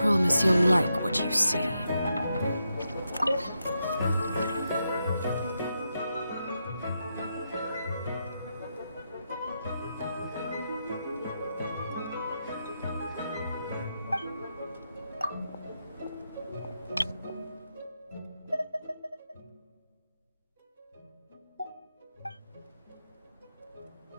you'll like what you see.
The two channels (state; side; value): inverted; both; correlation -0.84